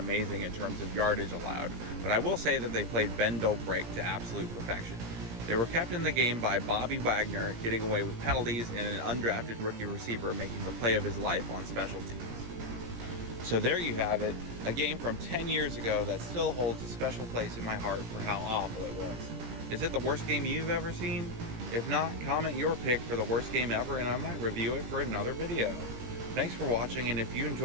in terms of yardage allowed, but I will say that they played bend don't break to absolute perfection. They were kept in the game by Bobby Wagner getting away with penalties and an undrafted rookie receiver making the play of his life on special teams. So there you have it, a game from 10 years ago that still holds a special place in my heart for how awful it was. Is it the worst game you've ever seen? If not, comment your pick for the worst game ever and I might review it for another video. Thanks for watching, and if you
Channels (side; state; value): left; late; 17 ms